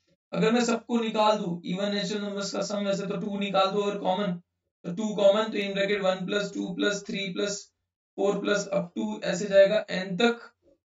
अगर मैं सबको निकाल दूं इवन नेचुरल नंबर्स का सम, वैसे तो 2 निकाल दो और कॉमन, तो 2 कॉमन, तो in bracket 1 plus 2 plus 3 plus 4 plus up to ऐसे जाएगा n तक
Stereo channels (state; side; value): identical; both; correlation 1.00